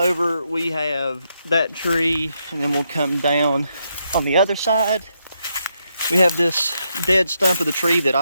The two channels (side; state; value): both; inverted; correlation -0.80